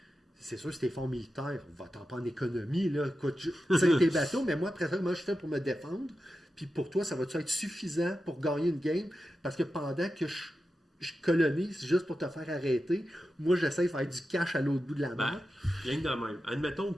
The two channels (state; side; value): normal; both; correlation 0.91